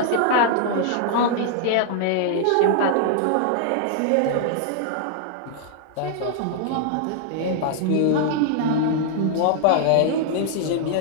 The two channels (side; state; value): both; different; correlation -0.01